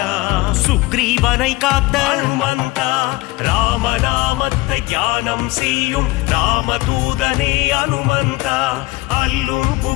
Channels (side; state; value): right; quieter; 21.0 dB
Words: சுக்ரீவனை காத்த அனுமந்தா ராமநாமத்தை தியானம் செய்யும் ராமதூதனே அனுமந்தா அல்லும்